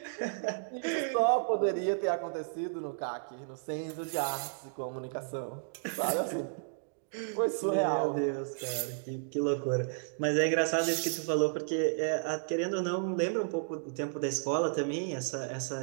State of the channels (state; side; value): silent; left; digital silence